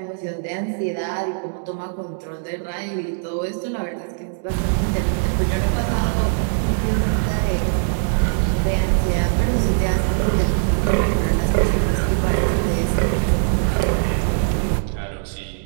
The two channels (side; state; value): left; silent; digital silence